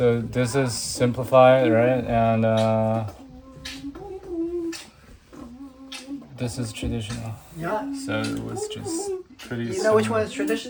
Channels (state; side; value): identical; both; correlation 1.00